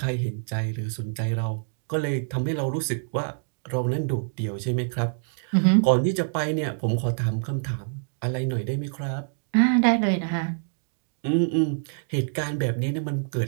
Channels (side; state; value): left; silent; digital silence